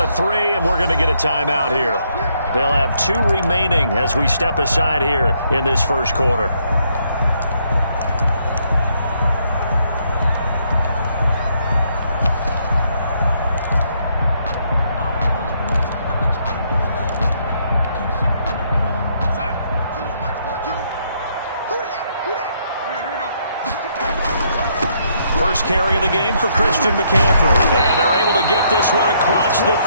to 3, and we're going to get a timeout here. They'll have 2 remaining as we step aside here in this first quarter. First carry of the game for Christian McCaffrey. And they're able to get this one across the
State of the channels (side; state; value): both; inverted; correlation -0.72